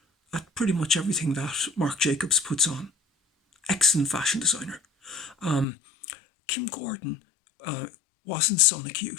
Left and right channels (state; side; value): drops out; right; at 5.7 s